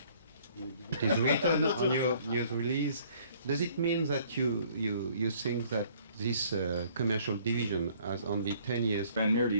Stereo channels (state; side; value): inverted; both; correlation -0.59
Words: It is written on your news release. Does it mean that you think that this commercial division has only 10 years? Van Meert